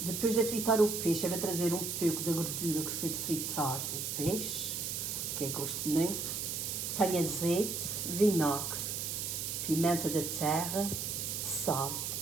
Depois de fritar o peixe, eu vou trazer um pouco da gordura que foi de fritar o peixe, que eu gosto muito. Tenho azeite, vinagre, pimenta da terra, sal.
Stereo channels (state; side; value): noise; right; hiss, 3 dB below the sound